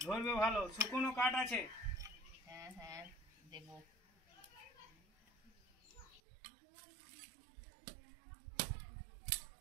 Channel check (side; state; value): left; drops out; at 6.2 s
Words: ধরবে ভালো, শুকনো কাঠ আছে। হ্যাঁ হ্যাঁ দেব।